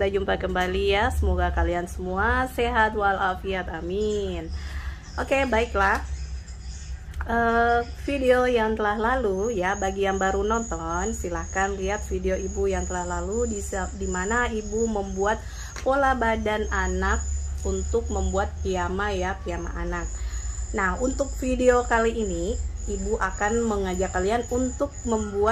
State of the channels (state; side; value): identical; both; correlation 1.00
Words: jumpa kembali ya. Semoga kalian semua sehat walafiat, amin. Oke, baiklah. Video yang telah lalu ya, bagi yang baru nonton silahkan lihat video ibu yang telah lalu di mana ibu membuat pola badan anak untuk membuat piyama ya, piyama anak. Nah, untuk video kali ini ibu akan mengajak kalian untuk